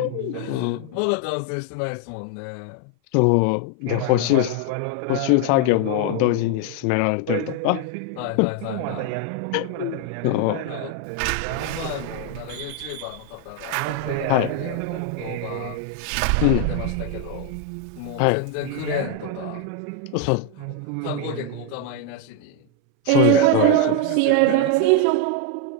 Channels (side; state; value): both; different; correlation 0.01